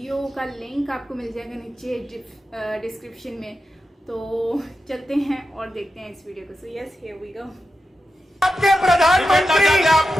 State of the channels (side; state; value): both; normal; correlation 0.90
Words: का लिंक आपको मिल जाएगा नीचे डिस्क्रिप्शन में। तो चलते हैं और देखते हैं इस वीडियो को। So yes, here we go. आपके प्रधानमंत्री